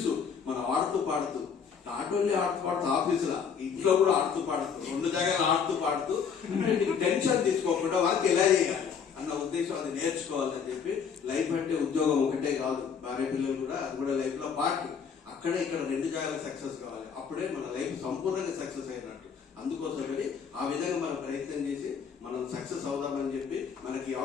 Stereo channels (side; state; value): right; quieter; 6.7 dB